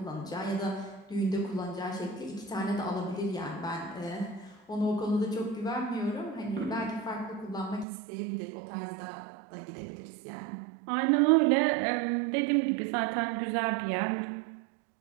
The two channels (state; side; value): drops out; left; at 7.9 s